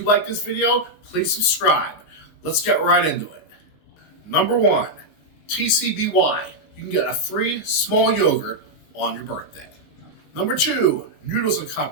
like this video, please subscribe. Let's get right into it. Number 1, TCBY. You can get a free small yogurt on your birthday. Number 2, Noodles &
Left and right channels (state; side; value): late; right; 19 ms